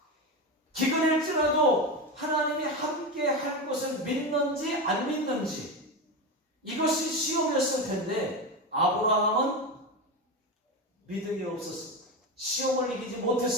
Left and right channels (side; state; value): both; normal; correlation 0.18